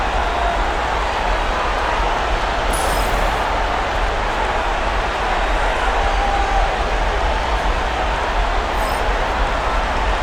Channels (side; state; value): both; identical; correlation 1.00